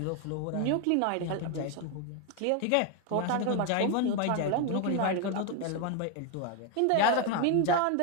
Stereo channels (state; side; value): different; both; correlation 0.01